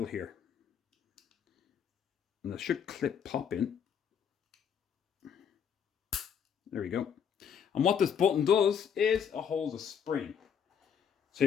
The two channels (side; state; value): right; quieter; 7.7 dB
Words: here. And that should pop in. There we go. And what this button does is it holds a spring. So